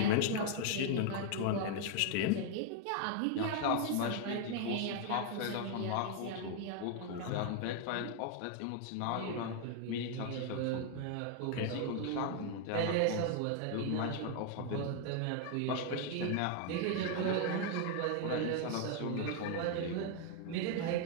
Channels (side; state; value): both; different; correlation 0.00